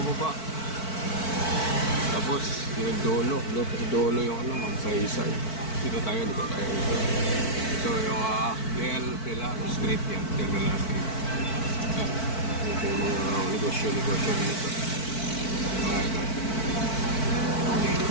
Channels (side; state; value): right; late; 4.5 ms